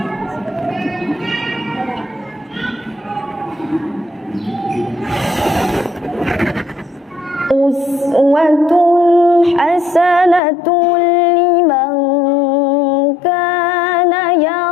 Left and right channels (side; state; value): right; drops out; at 10.4 s